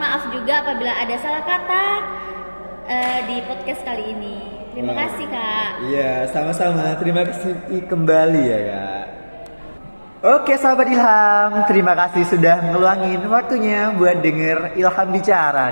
maaf juga apabila ada salah kata di podcast kali ini. Terima kasih Kak. Iya, sama-sama. Terima kasih kembali ya Kak. Oke sahabat Ilham, terima kasih sudah ngeluangin waktunya buat denger Ilham bicara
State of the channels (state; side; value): inverted; both; correlation -1.00